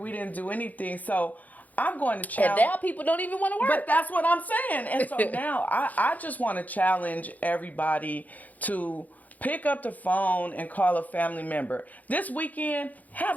didn't do anything. So I'm going to And challenge. now people don't even want to work. But that's what I'm saying. And so now I just want to challenge everybody to pick up the phone and call a family member. This weekend, have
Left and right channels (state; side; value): late; right; 0.079 ms